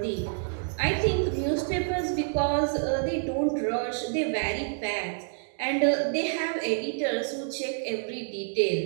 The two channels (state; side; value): silent; left; digital silence